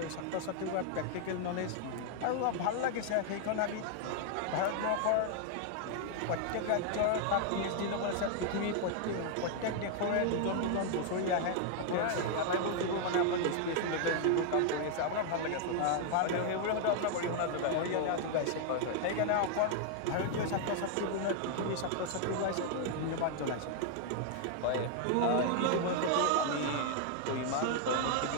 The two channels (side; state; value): both; different; correlation 0.00